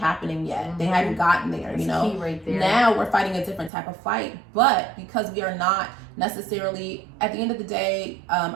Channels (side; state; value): left; drops out; at 3.7 s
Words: yet. They hadn't gotten there. Key right there. Now we're fighting a different type of fight, but because we are not necessarily at the end of the day,